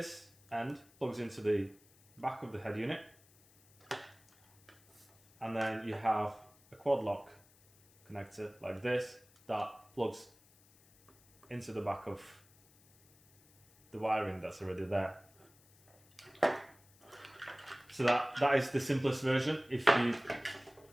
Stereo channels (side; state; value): left; noise; hiss, 28 dB below the sound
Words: end plugs into the back of the head unit, and then you have a quad lock connector like this that plugs into the back of the wiring that's already there. So that is the simplest version. If you